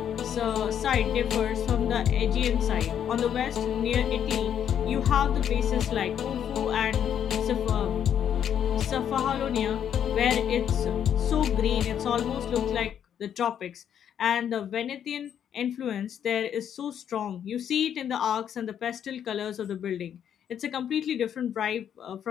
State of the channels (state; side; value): quieter; right; 9.1 dB